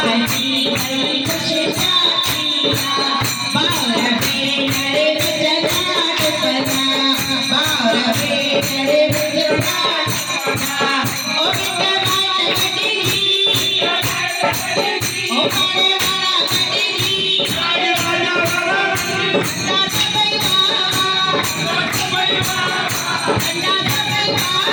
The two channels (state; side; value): identical; both; correlation 1.00